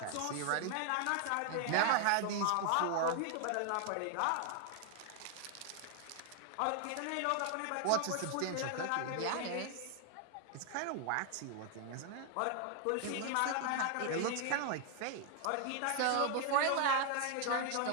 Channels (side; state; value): both; different; correlation 0.00